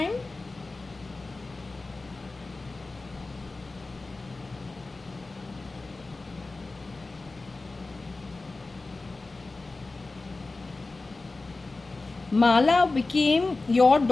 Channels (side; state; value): right; quieter; 3.4 dB